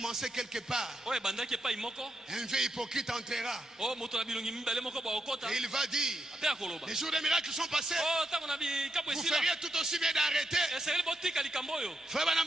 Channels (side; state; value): both; normal; correlation 0.81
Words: quelque part, Oyo ebandaki epai moko. un vieux hypocrite entrera Oyo moto na bilongi mibale moko baokota. et il va dire, Ape akoloba. les jours des miracles sont passés, Oh, ntango na bikapo vous esila. feriez tout aussi bien d'arrêter. Esengeli botika likambo oyo. Frère